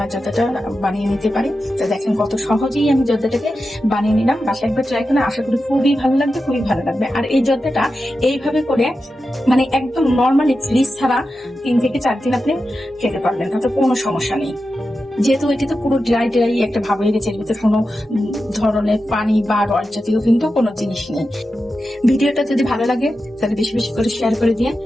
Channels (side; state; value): both; normal; correlation 0.91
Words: জর্দাটা বানিয়ে নিতে পারি। তো দেখেন কত সহজেই আমি জর্দাটাকে বানিয়ে নিলাম। বাসায় একবার ট্রাই করে আশা করি খুবই ভালো লাগবে, খুবই ভালো লাগবে। আর এই জর্দাটা এইভাবে করে মানে একদম নর্মালি ফ্রিজ ছাড়া 3 থেকে 4 দিন আপনি খেতে পারবেন, তাতে কোনো সমস্যা নেই। যেহেতু এটি তো পুরো ড্রাই একটা ভাব হয়ে গেছে, এর ভিতরে কোনো ধরনের পানি বা রস জাতীয় কিন্তু কোনো জিনিস নেই। ভিডিওটা যদি ভালো লাগে তাহলে বেশি বেশি করে শেয়ার করে দিয়ে,